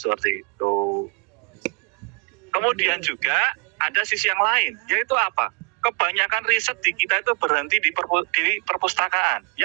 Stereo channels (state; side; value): quieter; left; 33.0 dB